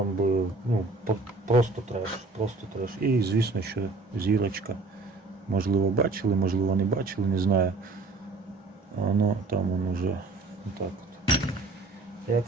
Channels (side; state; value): left; quieter; 3.5 dB